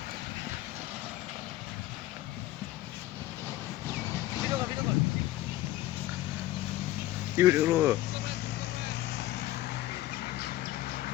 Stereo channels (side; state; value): right; quieter; 15.4 dB